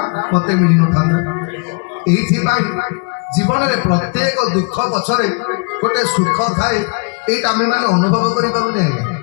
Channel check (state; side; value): quieter; right; 36.2 dB